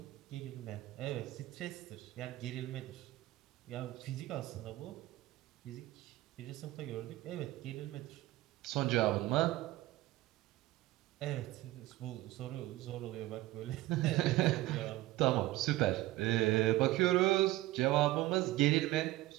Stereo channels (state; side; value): quieter; left; 17.1 dB